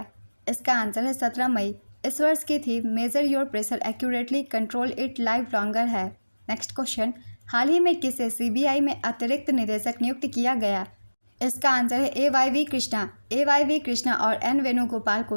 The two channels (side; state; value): both; inverted; correlation -1.00